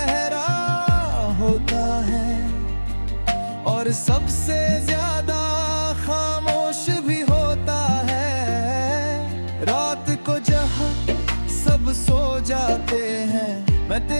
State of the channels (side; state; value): both; inverted; correlation -1.00